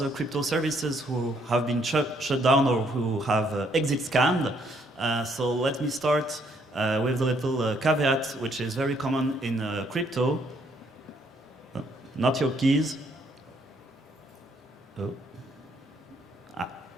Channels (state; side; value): normal; both; correlation 0.69